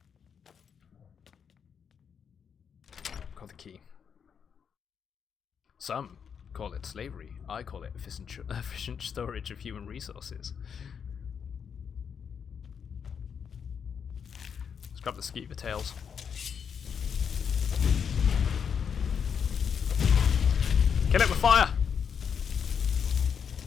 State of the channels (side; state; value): right; quieter; 7.1 dB